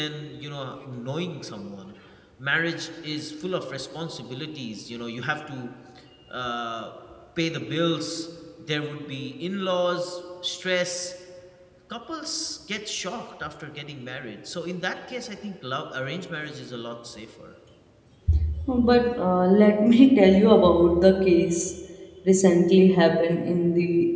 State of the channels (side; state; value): both; identical; correlation 1.00